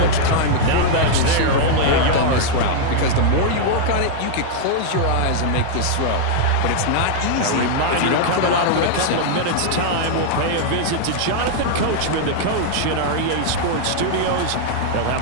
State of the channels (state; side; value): different; both; correlation -0.01